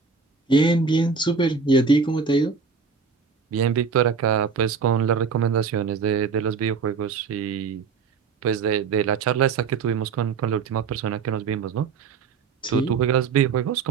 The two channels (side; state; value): left; quieter; 5.4 dB